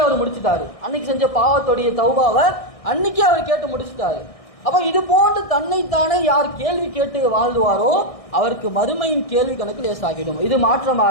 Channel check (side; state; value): right; late; 1.6 ms